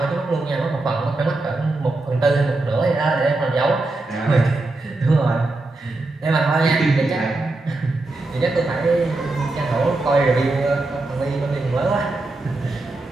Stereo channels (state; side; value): quieter; left; 3.0 dB